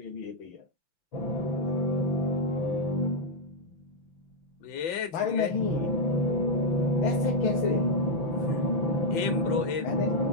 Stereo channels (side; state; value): right; late; 5.9 ms